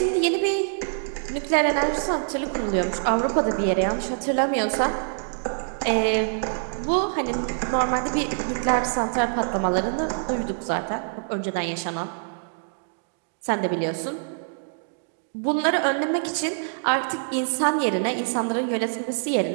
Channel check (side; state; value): left; silent; digital silence